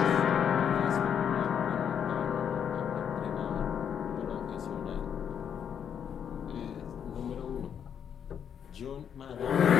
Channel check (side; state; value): right; quieter; 8.2 dB